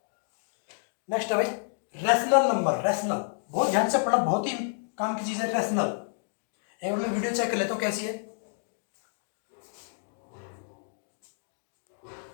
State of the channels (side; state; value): right; silent; digital silence